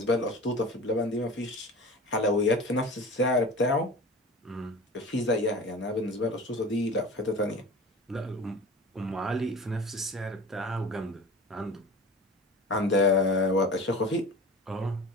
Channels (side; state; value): both; normal; correlation 0.37